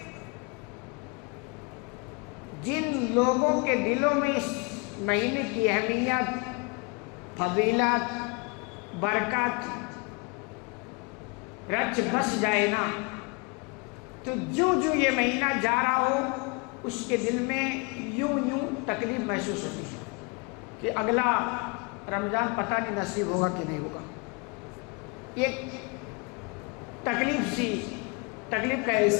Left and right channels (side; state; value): right; quieter; 30.8 dB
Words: جن لوگوں کے دلوں میں اس مہینے کی اہمیت، فضیلت، برکت رچ بس جائے نا، تو جو یہ مہینہ جا رہا ہو اس کے دل میں یوں تکلیف محسوس ہوتی ہے کہ اگلا رمضان پتہ نہیں نصیب ہوگا کہ نہیں ہوگا۔ ایک تکلیف کا